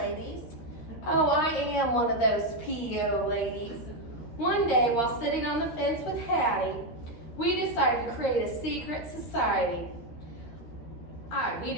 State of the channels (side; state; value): right; late; 13 ms